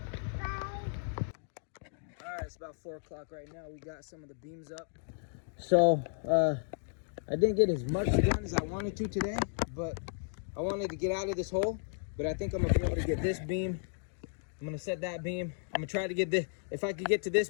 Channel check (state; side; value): silent; right; digital silence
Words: Alright, it's about 4 o'clock right now. We got some of the beams up. So, I didn't get as much done as I wanted to today, but I wanted to get out of this hole. But I think I'm gonna be able to get this beam. I'm gonna set that beam. I'm gonna try to get this. If I could get to